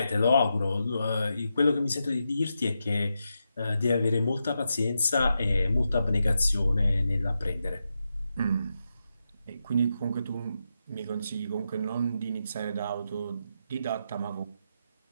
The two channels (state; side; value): inverted; both; correlation -0.86